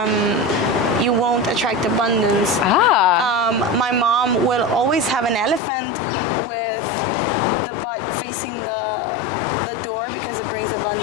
won't attract abundance. My mom will always have an elephant with the butt facing the door because it brings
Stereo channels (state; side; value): drops out; right; at 5.6 s